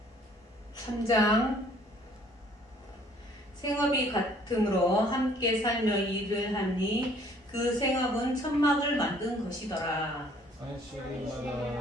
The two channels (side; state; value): both; normal; correlation 0.58